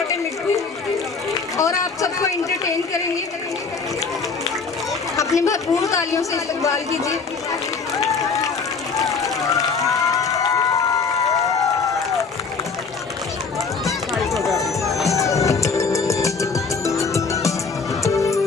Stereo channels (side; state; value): right; quieter; 4.9 dB